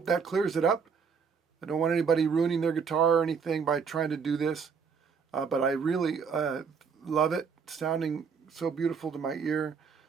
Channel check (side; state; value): left; quieter; 6.0 dB